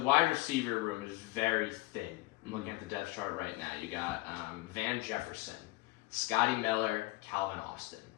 receiver room is very thin. I'm looking at the depth chart right now. You got Van Jefferson, Scotty Miller, Calvin Austin.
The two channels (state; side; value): quieter; right; 20.7 dB